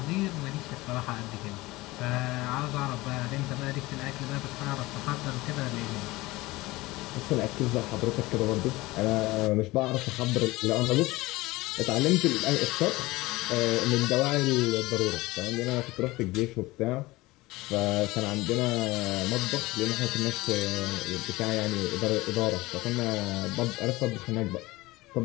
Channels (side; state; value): right; quieter; 20.2 dB